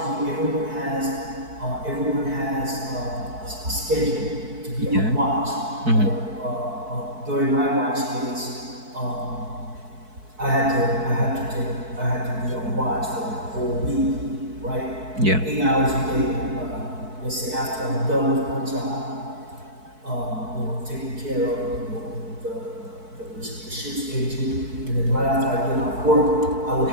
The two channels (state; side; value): late; left; 4.6 ms